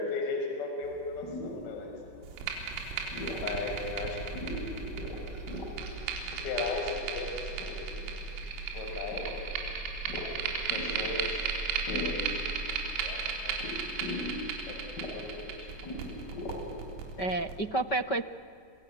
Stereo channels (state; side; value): late; right; 5.2 ms